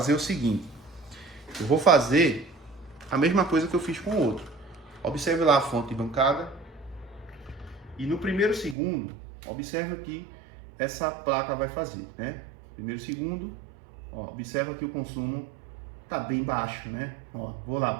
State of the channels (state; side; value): drops out; left; at 8.8 s